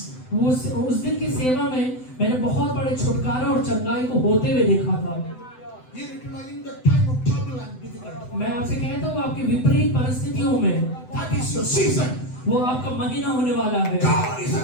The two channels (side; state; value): right; late; 7.9 ms